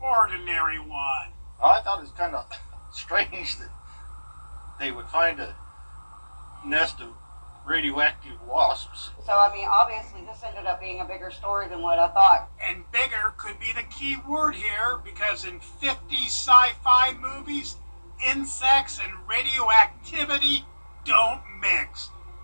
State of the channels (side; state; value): both; inverted; correlation -1.00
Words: ordinary one. I thought it was kind of strange that they would find a nest of radioactive wasps. So, I mean, obviously this ended up being a bigger story than what I thought. And bigger could be the key word here, because in 50 sci-fi movies, insects and radioactivity don't mix.